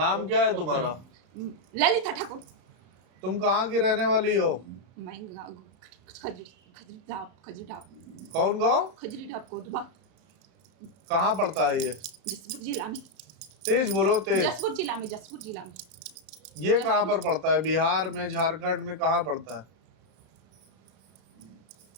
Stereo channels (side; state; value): left; late; 32 ms